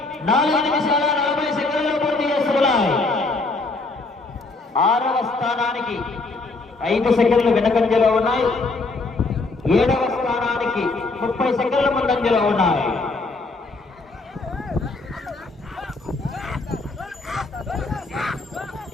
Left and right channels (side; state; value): right; quieter; 3.5 dB